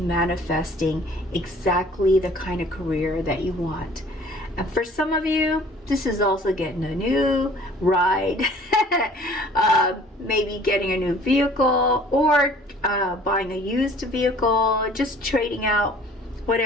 exactly the kind of career that you want. And for some of you, this is also getting a new ride, maybe getting a new vehicle or buying a used vehicle, just trading out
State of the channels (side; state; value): both; normal; correlation 0.52